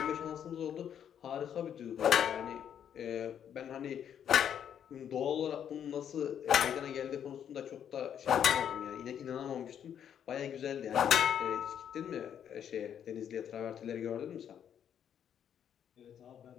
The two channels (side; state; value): right; quieter; 9.0 dB